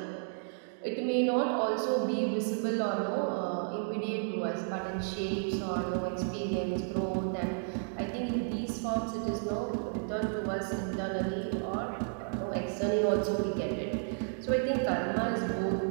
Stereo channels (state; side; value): silent; left; digital silence